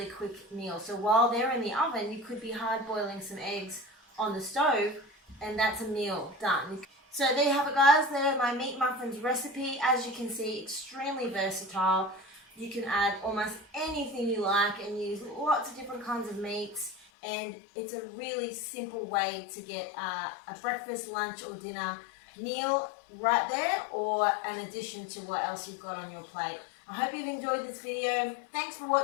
quick meal. So while they're in the oven, you could be hard-boiling some eggs on the stove, and that's a meal done. So there you have it, guys. There's my meat muffins recipe. As you can see, extremely versatile. You can add almost anything you like and use lots of different kinds of meats, and it's a really simple way to get a breakfast, lunch or dinner meal right there, or an addition to what else you've got on your plate. I hope you've enjoyed this video. Thanks for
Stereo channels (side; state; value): right; drops out; at 17.1 s